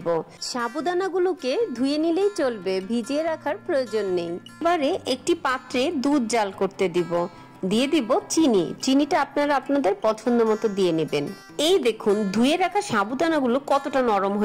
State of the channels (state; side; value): identical; both; correlation 1.00